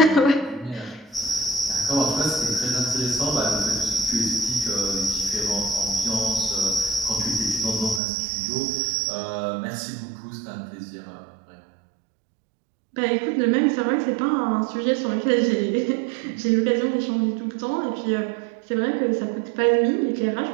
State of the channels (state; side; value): drops out; left; at 8.0 s